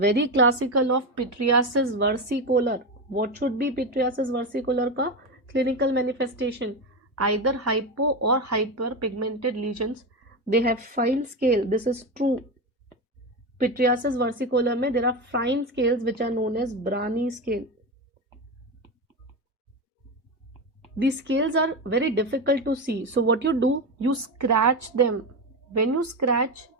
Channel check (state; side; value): normal; both; correlation 0.17